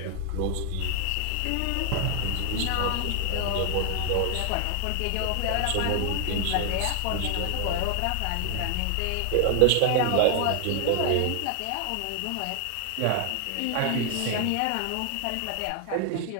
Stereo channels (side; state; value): both; different; correlation 0.00